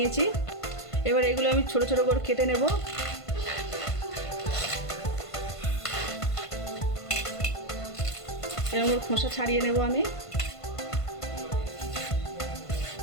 এবার এগুলো আমি ছোট ছোট করে কেটে নেব। এরকম খোসা ছাড়িয়ে নেব আমি।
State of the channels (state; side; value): late; right; 1.5 ms